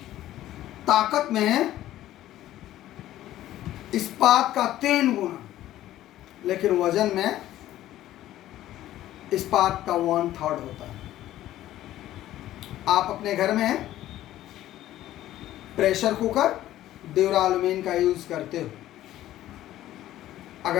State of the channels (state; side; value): quieter; right; 13.8 dB